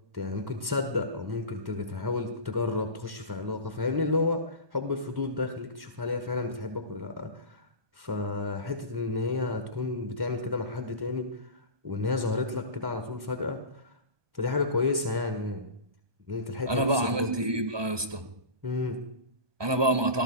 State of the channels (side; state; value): left; late; 1.2 ms